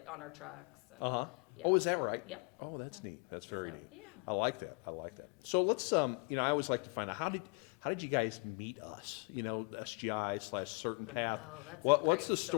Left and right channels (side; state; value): right; quieter; 33.1 dB